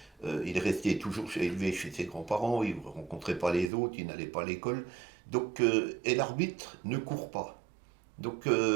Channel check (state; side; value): drops out; left; at 3.7 s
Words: il restait toujours élevé chez ses grands-parents, il ne rencontrait pas les autres, il n'allait pas à l'école. Donc, et l'arbitre ne court pas. Donc, il